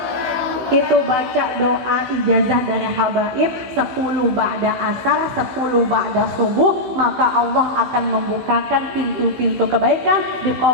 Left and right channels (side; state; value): left; late; 16 ms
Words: Itu baca doa ijazah dari habaib 10 ba'da asar, 10 ba'da subuh, maka Allah akan membukakan pintu-pintu kebaikan,